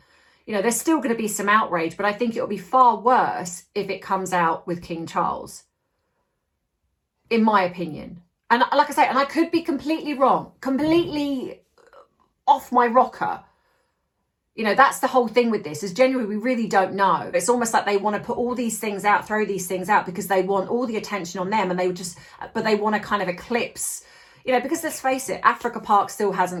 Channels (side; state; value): both; identical; correlation 1.00